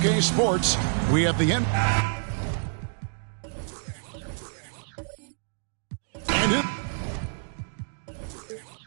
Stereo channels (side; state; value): left; silent; digital silence